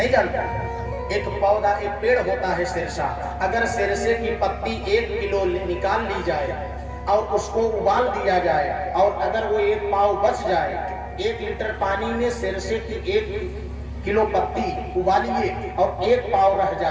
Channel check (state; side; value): identical; both; correlation 1.00